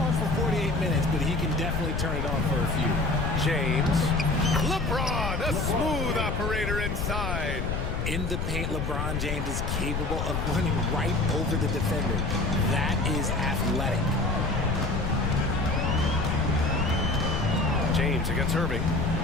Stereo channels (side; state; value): left; noise; rumble, 1 dB below the sound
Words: for 48 minutes, but he can definitely turn it on for a few. James. LeBron, a smooth operator inside. In the paint, LeBron James is capable of running right over the defender. That is athletic. James against Irving.